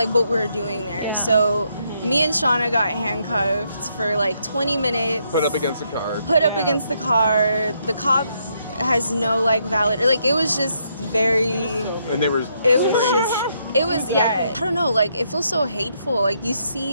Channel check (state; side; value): inverted; both; correlation -0.75